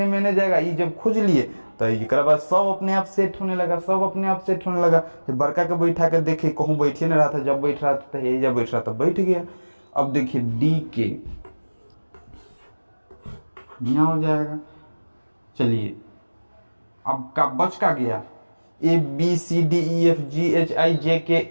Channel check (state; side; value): inverted; both; correlation -1.00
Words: मैंने जाएगा। ये जब खोज लिए तो एक बाद सब अपने आप सेट होने लगा, सब अपने आप सेट होने लगा। बड़का के बैठा के देखे कहूँ बैठे नहीं रहा था, जब बैठ रहा था यही जब बैठ रहा था बैठ गया। अब देखिए DK यहाँ हो जाएगा। चलिए अब का बच का गया, ABCDEFGHIJK